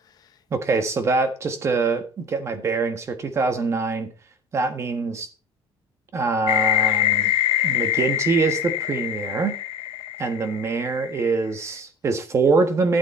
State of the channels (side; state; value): both; normal; correlation 0.41